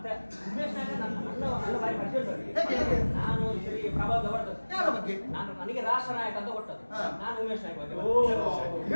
ಉಮೇಶ್ ನಾಯಕ ನನ್ನ ಬಾರಿ ಪರಿಚಯ. ಹೇಗೆ? ನಾನು ಈ ಸರಿ ಪ್ರಭಾವ ಹೊರಟದ್ದು. ಯಾರ ಬಗ್ಗೆ? ನನಗೆ ರಾಷ್ಟ್ರ ನಾಯಕ ಅಂತ ಕೊಟ್ಟದ್ದು. ಹಾ. ನಾನು ಉಮೇಶ್ ನಾಯಕ ಬಗ್ಗೆ.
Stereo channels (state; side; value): inverted; both; correlation -1.00